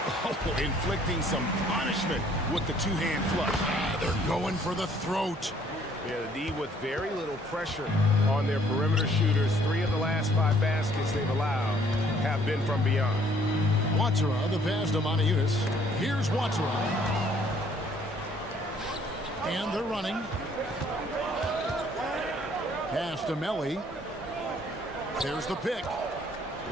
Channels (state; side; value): normal; both; correlation 0.61